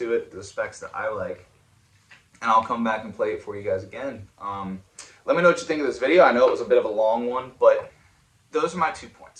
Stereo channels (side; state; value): both; identical; correlation 1.00